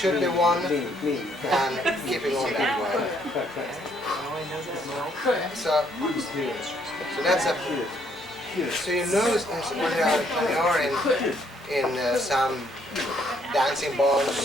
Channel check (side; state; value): both; normal; correlation 0.69